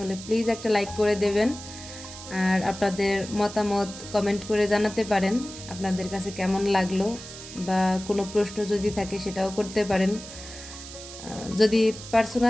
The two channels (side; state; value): right; noise; hiss, 13 dB below the sound